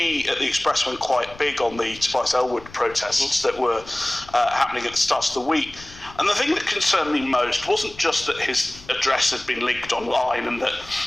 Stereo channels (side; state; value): left; noise; rumble, 20 dB below the sound